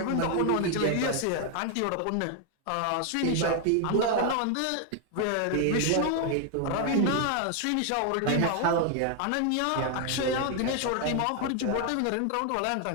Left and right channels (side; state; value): both; different; correlation 0.00